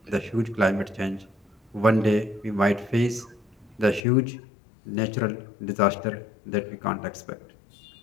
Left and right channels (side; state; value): right; drops out; at 4.0 s